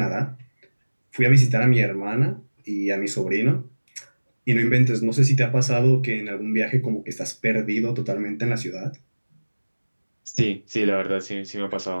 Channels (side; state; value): both; inverted; correlation -1.00